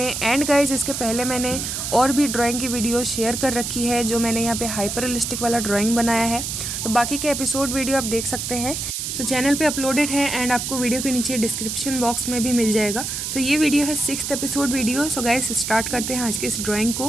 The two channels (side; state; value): right; noise; hiss, 4 dB below the sound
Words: एंड गाइज, इसके पहले मैंने और भी ड्राइंग की वीडियो शेयर कर रखी है जो मैंने यहाँ पे हाइपर रियलिस्टिक वाला ड्राइंग बनाया है, तो बाकी के एपिसोड वीडियो आप देख सकते हैं। सो चैनल पे अपलोडेड है एंड आपको वीडियो के नीचे डिस्क्रिप्शन बॉक्स में भी मिल जाएगा। सो ये वीडियो है 6th episode video. So guys, start करते हैं आज के इस ड्राइंग